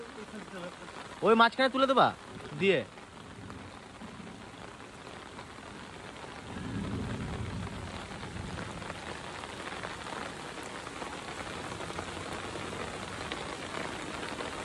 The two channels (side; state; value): both; identical; correlation 1.00